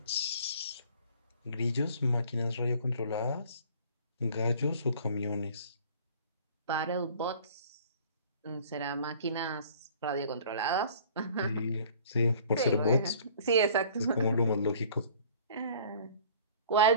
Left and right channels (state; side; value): inverted; both; correlation -0.50